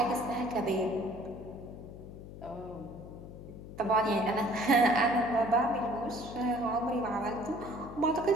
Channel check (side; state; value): left; noise; hum, 13 dB below the sound